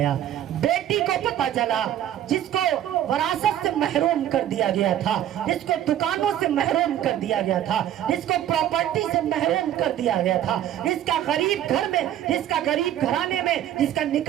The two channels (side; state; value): left; quieter; 11.5 dB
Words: بیٹی کو پتہ چلا جس کو وراثت سے محروم کر دیا گیا تھا، جس کو دکانوں سے محروم کر دیا گیا تھا، جس کو پراپرٹی سے محروم کر دیا گیا تھا، جس کا غریب گھر میں، جس کا غریب گھرانے میں جس کا